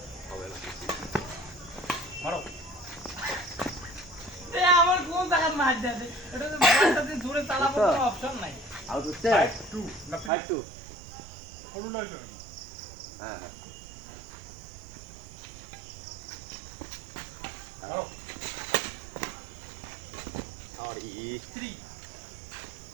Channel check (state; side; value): drops out; left; at 10.3 s